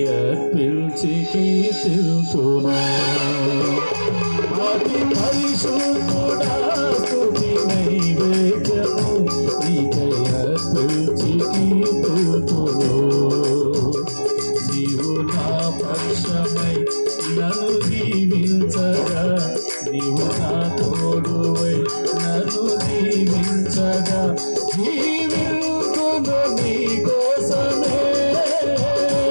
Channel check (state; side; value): inverted; both; correlation -1.00